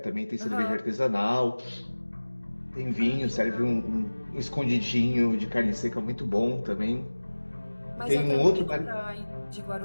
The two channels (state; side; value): inverted; both; correlation -1.00